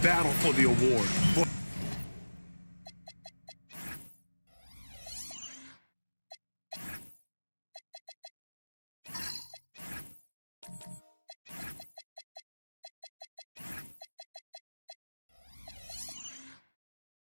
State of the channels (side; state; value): both; inverted; correlation -1.00